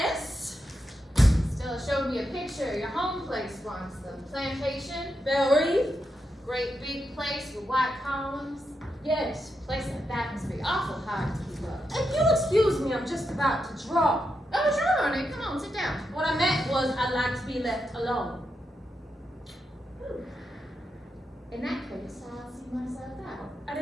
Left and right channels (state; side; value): normal; both; correlation 0.85